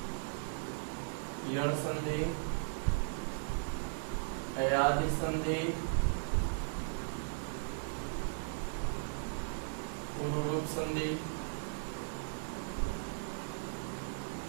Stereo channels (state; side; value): silent; left; digital silence